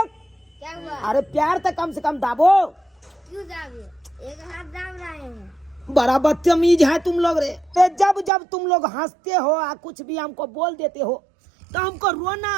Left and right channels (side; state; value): left; drops out; at 8.3 s